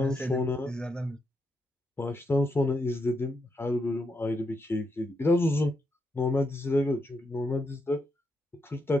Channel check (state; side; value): normal; both; correlation 0.81